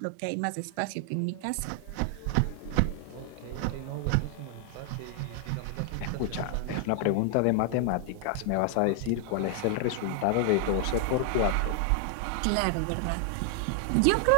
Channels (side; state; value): both; different; correlation 0.00